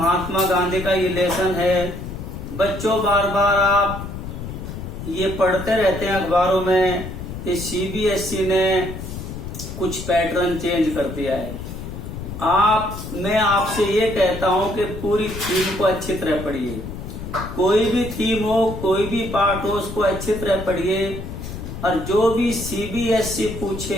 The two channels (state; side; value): noise; left; rumble, 8 dB below the sound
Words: गांधी का ये लेसन है। बच्चों बार बार आप ये पढ़ते रहते हैं अखबारों में कि सीबीएसई ने कुछ पैटर्न चेंज कर दिया है। मैं आपसे ये कहता हूं कि पूरी थीम को अच्छी तरह पढ़िए। कोई भी थीम हो, कोई भी पार्ट हो, उसको अच्छी तरह पढ़िए और जो भी सीबीएसई